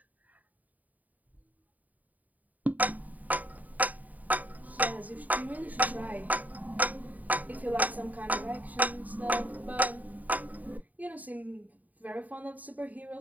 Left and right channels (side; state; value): left; late; 0.076 ms